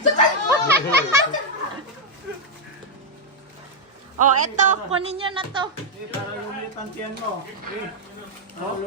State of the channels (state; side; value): normal; both; correlation -0.01